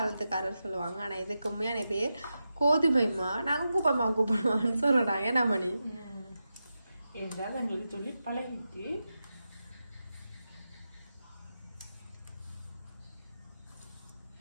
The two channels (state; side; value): inverted; both; correlation -0.90